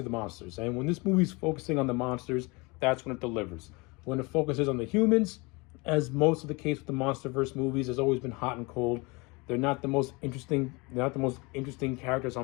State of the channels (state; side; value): quieter; right; 26.8 dB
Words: the monsters, and when this movie's focusing on the monsters, that's when it delivers. When it focuses on the humans, as most of the case with the MonsterVerse movies, has always been hot and cold. They're not the most interesting. They're not the most interesting characters